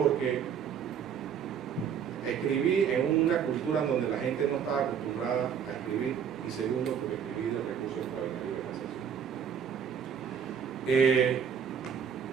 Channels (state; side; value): quieter; left; 7.7 dB